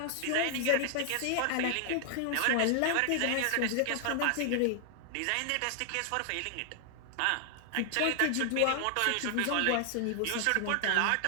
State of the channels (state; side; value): different; both; correlation 0.00